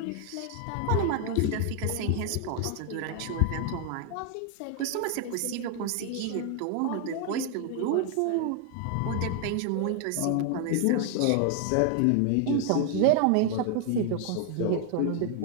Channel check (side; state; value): both; different; correlation 0.00